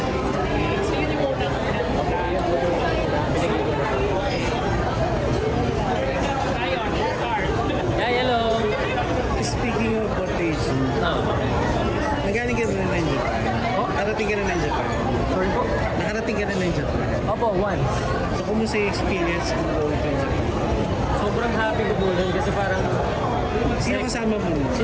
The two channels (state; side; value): identical; both; correlation 1.00